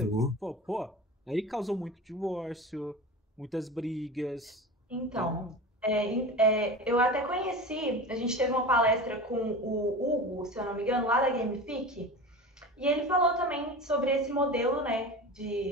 sim. aí causou muito divórcio, muitas brigas. Então, Então, eu até conheci, a gente teve uma palestra com o Hugo, se eu não me engano, lá da Gamifique, e ele falou também sobre esse modelo, né,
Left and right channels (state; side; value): normal; both; correlation 0.31